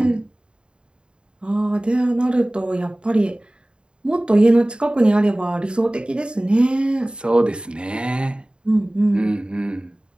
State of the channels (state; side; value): late; left; 0.052 ms